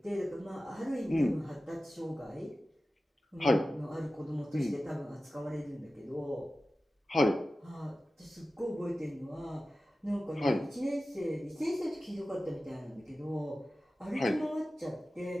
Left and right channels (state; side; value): normal; both; correlation 0.95